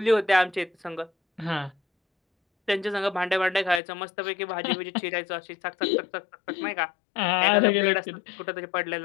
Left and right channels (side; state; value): right; drops out; at 3.8 s